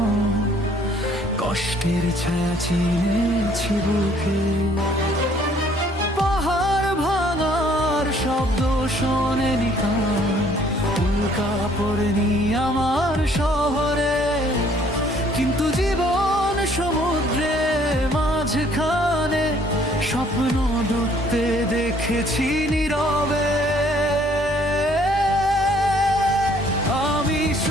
কষ্টের ছায়া চিনেছি বুকে। পাহাড় ভাঙার শব্দ শোনেনি কান, উল্কা পড়েনি আমার শহরে, কিন্তু জীবন সমুদ্রে মাঝখানে স্বপ্ন ডুবতে দেখেছি নীরবে। আমি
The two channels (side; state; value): both; normal; correlation 0.61